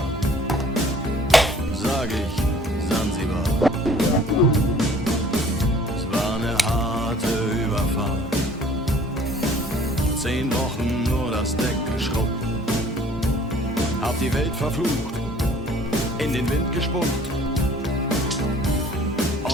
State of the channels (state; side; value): normal; both; correlation 0.54